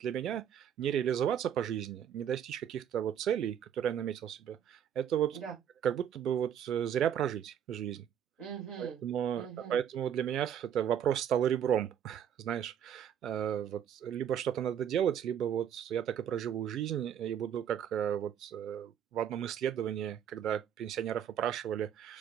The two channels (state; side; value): quieter; left; 9.2 dB